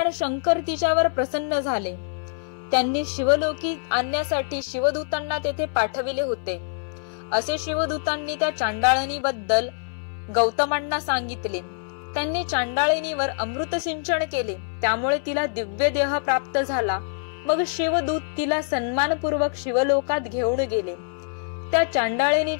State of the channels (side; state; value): right; silent; 60 dB below the other